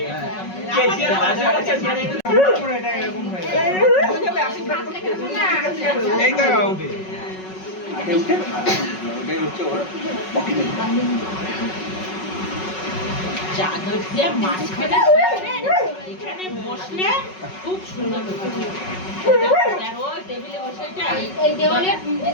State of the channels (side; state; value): right; late; 5.4 ms